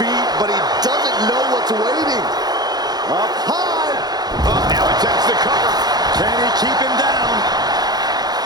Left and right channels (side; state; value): left; late; 0.19 ms